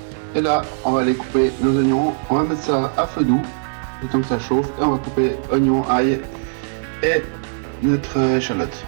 Et là, on va aller couper nos oignons. On va mettre ça à feu doux, le temps que ça chauffe, et on va couper oignons, ail et notre échalote.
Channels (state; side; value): silent; left; 64 dB below the other